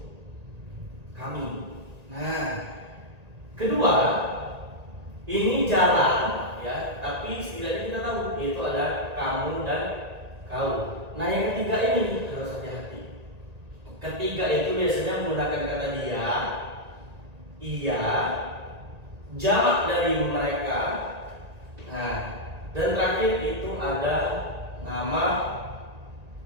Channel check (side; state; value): left; late; 1.9 ms